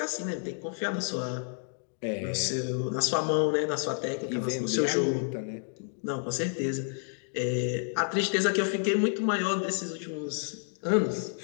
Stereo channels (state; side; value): silent; right; 58 dB below the other